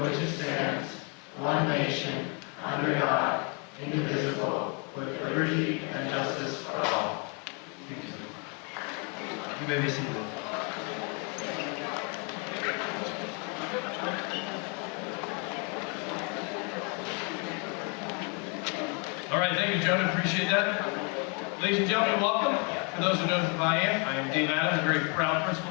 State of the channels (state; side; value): quieter; right; 33.9 dB